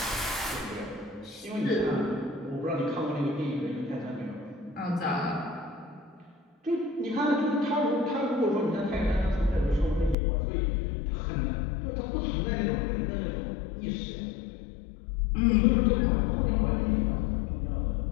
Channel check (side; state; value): right; drops out; at 10.2 s